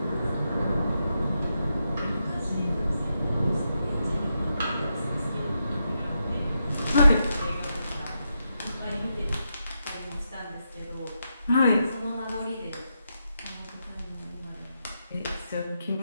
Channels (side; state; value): both; inverted; correlation -0.84